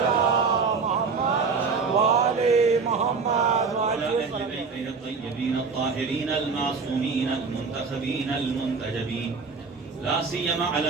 محمد وآل محمد وعلى أهل بيته الطيبين الطاهرين المعصومين المنتخبين المنتجبين لا سيما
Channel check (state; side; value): quieter; left; 4.9 dB